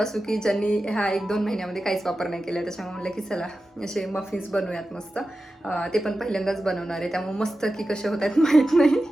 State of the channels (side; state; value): both; normal; correlation 0.93